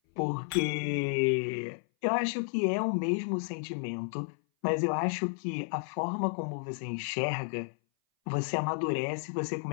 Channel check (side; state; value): right; silent; 57 dB below the other